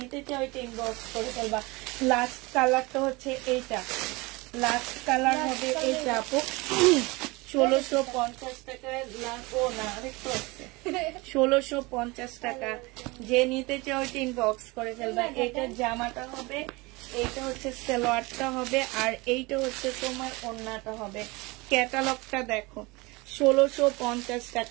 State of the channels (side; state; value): left; quieter; 24.2 dB